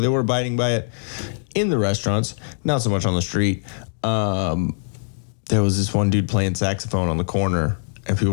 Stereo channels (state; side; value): silent; right; digital silence